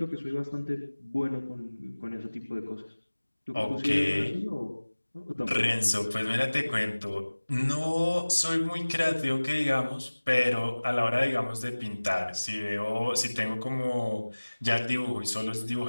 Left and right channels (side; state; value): both; inverted; correlation -1.00